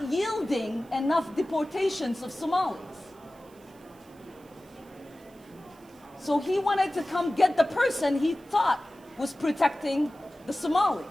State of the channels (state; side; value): noise; right; hiss, 29 dB below the sound